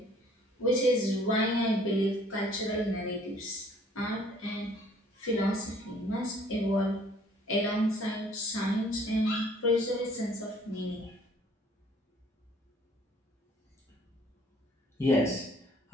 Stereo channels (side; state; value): both; normal; correlation 0.58